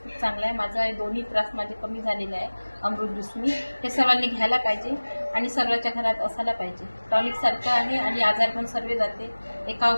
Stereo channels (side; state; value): both; inverted; correlation -1.00